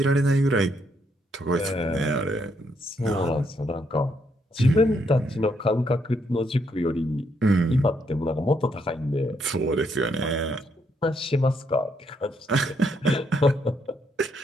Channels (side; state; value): both; normal; correlation 0.74